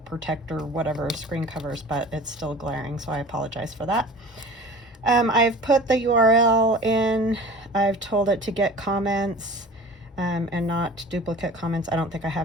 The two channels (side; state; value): both; normal; correlation 0.41